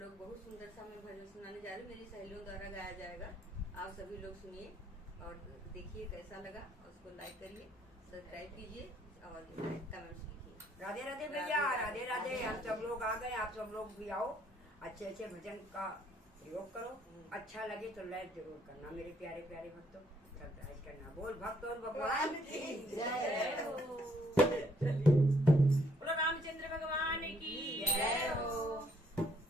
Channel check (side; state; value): both; normal; correlation 0.67